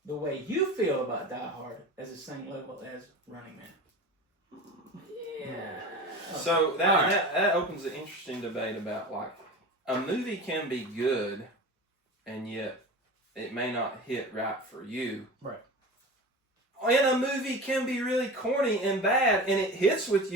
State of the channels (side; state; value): both; normal; correlation 0.32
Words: the way you feel about Die Hard as the same level as Running Man. Yeah. So that opens an interesting debate about, like, a movie can be good, and yet it may not hit right for you. Right. And a movie can be really corny and bad, and it hits with